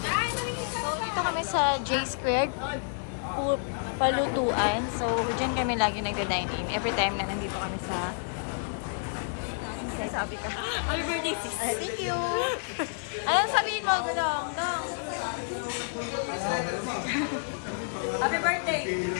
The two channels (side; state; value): right; silent; digital silence